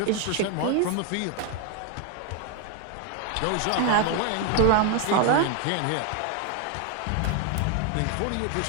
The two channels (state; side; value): different; both; correlation 0.01